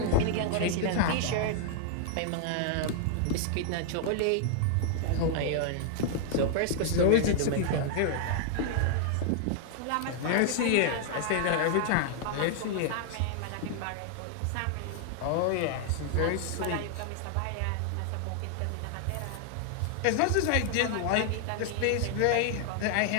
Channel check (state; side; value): different; both; correlation 0.00